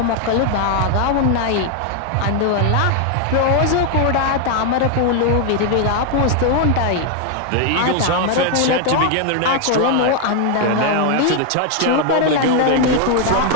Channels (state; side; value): different; both; correlation 0.00